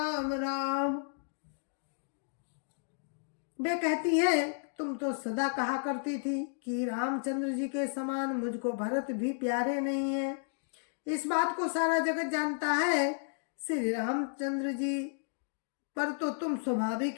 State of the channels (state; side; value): silent; right; digital silence